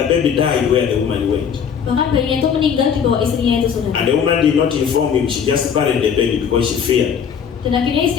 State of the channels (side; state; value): right; quieter; 7.4 dB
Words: the baby died where the woman went. Bahkan bayinya itu meninggal di bawah istrinya itu, saudara. And the woman did not inform him, she just buried the baby because she feared. Dan akhirnya